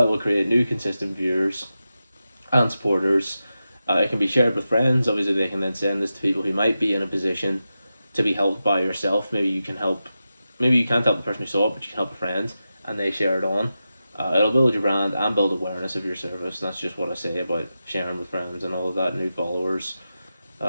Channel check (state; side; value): inverted; both; correlation -0.91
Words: will create new consistent viewers and supporters. It can be shared with friends. Obviously, they can then send this to people who might be in a position to be helped by yourself. Maybe you can help. Maybe you can't help the person who saw it, but you can help a friend, and they share it on. It'll build your brand and build awareness of your service. And that's just what I say about sharing with friends and all of that, new followers,